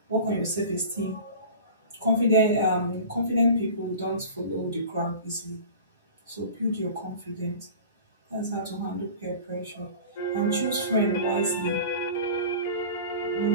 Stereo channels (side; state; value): both; inverted; correlation -0.39